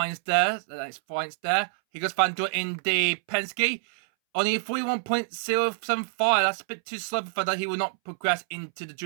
there. That's points there. He goes Van Dorn in the Penske. Only 41.075. That's a bit too slow for that. He will not progress into the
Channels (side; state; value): left; silent; 60 dB below the other